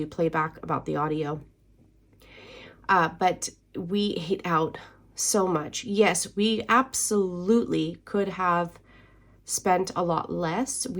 playback about the audio. But we ate out so much. Yes, we absolutely could have spent a lot less.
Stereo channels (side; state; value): both; identical; correlation 1.00